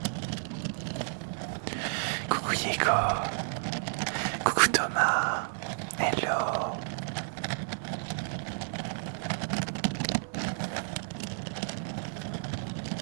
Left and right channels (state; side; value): silent; left; 57 dB below the other